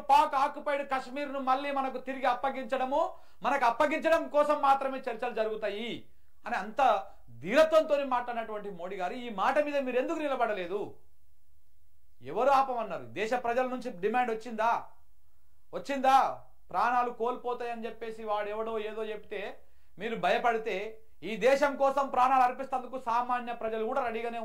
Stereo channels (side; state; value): both; identical; correlation 1.00